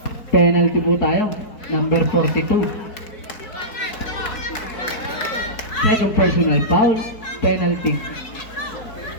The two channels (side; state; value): right; late; 4.6 ms